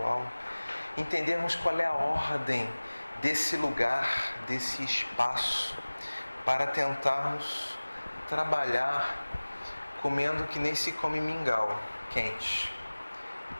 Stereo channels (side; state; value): both; inverted; correlation -1.00